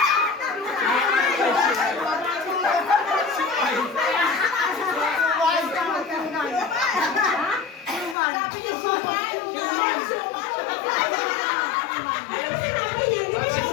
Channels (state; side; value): drops out; right; at 8.2 s